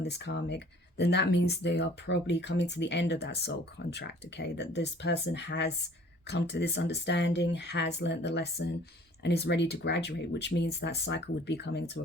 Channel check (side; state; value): both; normal; correlation 0.52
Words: this karmic, then that means they are probably coming to the end of that soul contract, okay? That this person has come to this understanding, has learnt the lesson, and is ready to graduate, which means that cycle would be coming to